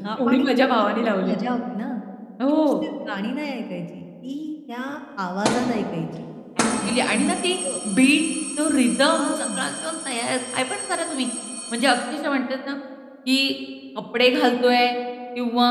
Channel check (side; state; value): both; identical; correlation 1.00